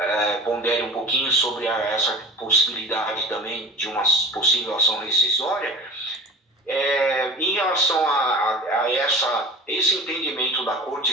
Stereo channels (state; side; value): normal; both; correlation 0.38